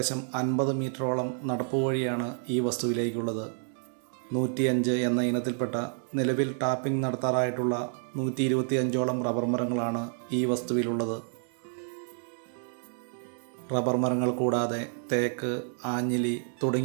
50 മീറ്ററോളം നടപ്പ് വഴിയാണ് ഈ വസ്തുവിലേക്കുള്ളത്. 105 എന്ന ഇനത്തിൽപ്പെട്ട നിലവിൽ ടാപ്പിംഗ് നടത്താറായിട്ടുള്ള 125ഓളം റബ്ബർ മരങ്ങളാണ് ഈ വസ്തുവിലുള്ളത്. റബ്ബർ മരങ്ങൾ കൂടാതെ തേക്ക്, ആഞ്ഞിലി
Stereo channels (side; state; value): left; silent; 58 dB below the other